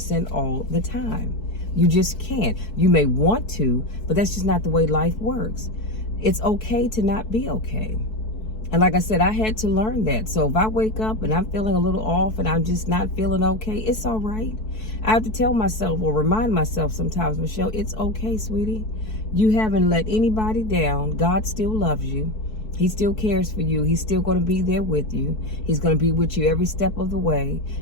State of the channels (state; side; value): late; right; 4.6 ms